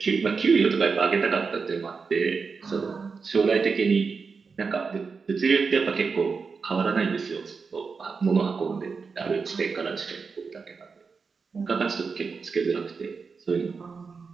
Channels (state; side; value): quieter; left; 5.0 dB